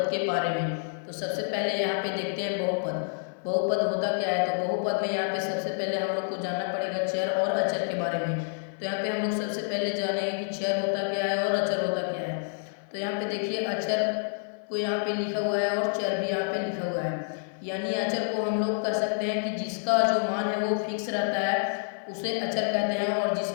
के बारे में। तो सबसे पहले यहाँ पे देखते हैं बहुपद। बहुपद होता क्या है? तो बहुपद में यहाँ पे सबसे पहले हम लोग को जानना पड़ेगा चर और अचर के बारे में। तो यहाँ पे हम लोग सबसे पहले जानेंगे कि चर होता क्या है और अचर होता क्या है। तो यहाँ पे देखिए, अचर को यहाँ पे लिखा हुआ है और चर भी यहाँ पे लिखा हुआ है। यानी अचर को हम लोग कह सकते हैं कि जिसका जो मान है वो फिक्स रहता है उसे अचर कहते हैं, और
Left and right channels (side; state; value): right; silent; 59 dB below the other